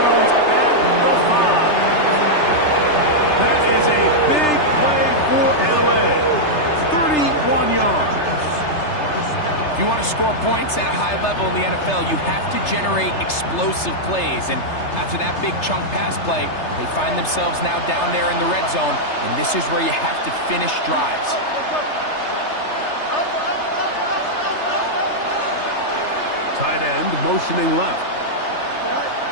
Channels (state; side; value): late; right; 3.3 ms